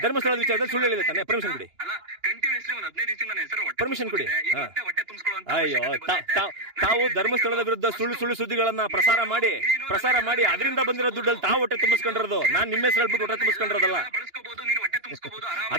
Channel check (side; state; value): left; late; 2.9 ms